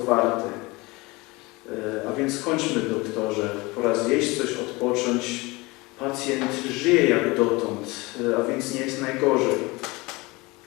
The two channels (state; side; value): quieter; right; 23.6 dB